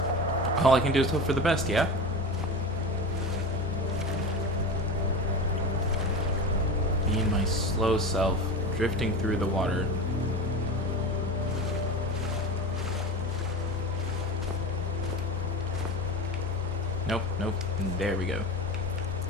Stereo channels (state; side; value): normal; both; correlation 0.27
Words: all I can do is hope for the best, yeah? Me and my slow self drifting through the water. Nope, nope. There we go.